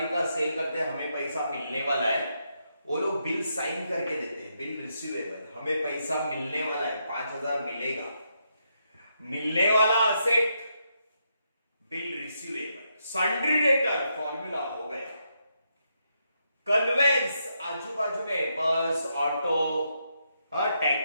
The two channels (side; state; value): both; inverted; correlation -0.80